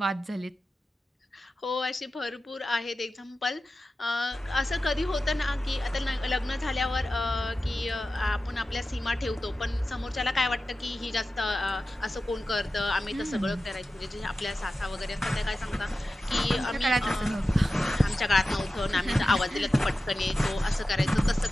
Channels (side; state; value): both; normal; correlation 0.94